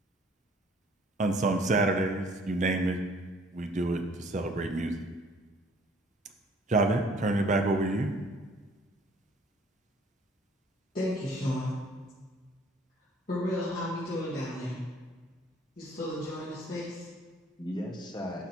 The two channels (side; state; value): both; normal; correlation 0.57